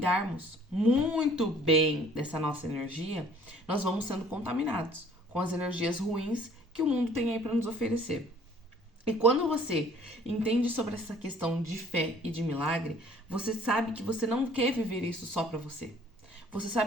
muito bem dessa nossa energia, nós vamos sendo contaminados com as energias ruins que o mundo tem aí para nos oferecer. E quando você entende sobre essa questão de fé e de milagre, você sabe que você não quer viver isso só para você. Você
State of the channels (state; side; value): normal; both; correlation 0.56